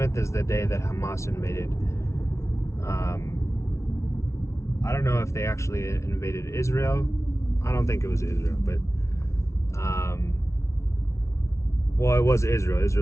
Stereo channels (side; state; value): right; late; 0.13 ms